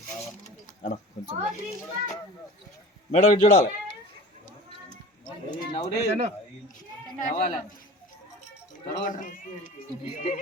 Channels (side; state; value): both; normal; correlation 0.39